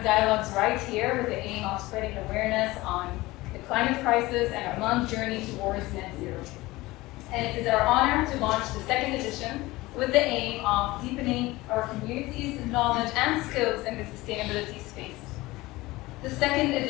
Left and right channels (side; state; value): right; quieter; 19.8 dB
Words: Dialogues right here with the aim of spreading awareness on the climate crisis and Oman's journey towards net zero. And it is our honor to launch the second edition with the aim of deepening our community's knowledge and skills in the sustainability space. The second